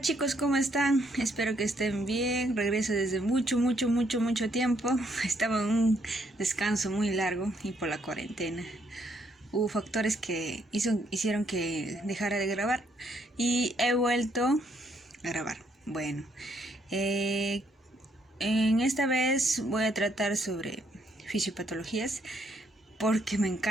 chicos, ¿cómo están? Espero que estén bien. Regreso desde mucho tiempo. Estaba en un descanso muy largo y por la cuarentena. Hubo factores que hicieron que dejara de grabar y he vuelto a grabar. Bueno, en esta vez voy a tratar sobre fisiopatologías porque me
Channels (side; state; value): both; normal; correlation 0.72